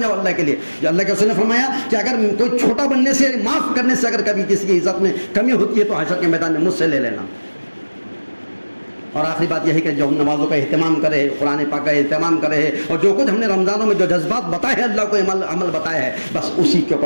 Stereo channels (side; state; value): both; inverted; correlation -1.00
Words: جاؤ اللہ کے لیے. جو اللہ کے رسول نے فرمایا کہ اگر کوئی چھوٹا بننے سے، معاف کرنے سے اگر کبھی کسی کی عزت میں کمی ہوتی ہے تو حشر کے میدان میں مجھ سے لے لینا. اور آخری بات یہ ہے کہ جو ہم نمازوں کا اہتمام کرے، قرآن پاک کا اہتمام کرے، اور جو کچھ ہم نے رمضانوں میں جو جذبات بتائے ہیں، اللہ کو عمل بتایا ہے، بس اسی کے